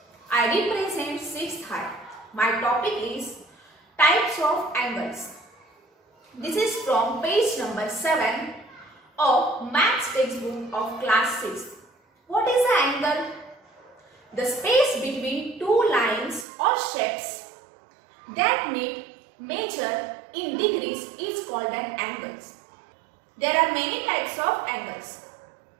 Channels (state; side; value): drops out; left; at 16.4 s